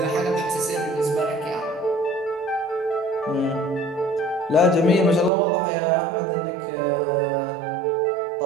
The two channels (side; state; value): left; drops out; at 5.3 s